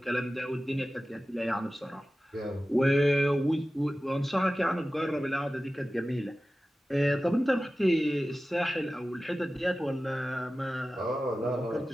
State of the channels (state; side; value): normal; both; correlation 0.95